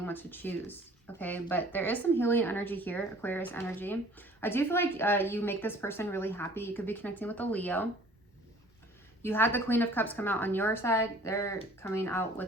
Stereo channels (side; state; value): both; normal; correlation 0.52